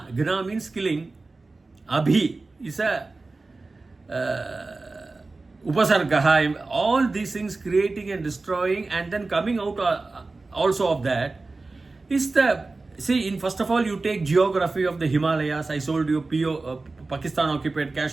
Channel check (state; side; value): quieter; left; 3.5 dB